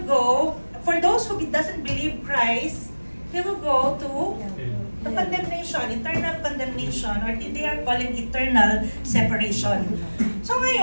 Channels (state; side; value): inverted; both; correlation -1.00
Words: go, for those who doesn't believe Christ, they will go to the condemnation, eternal condemnation, or they are calling eternal separation. So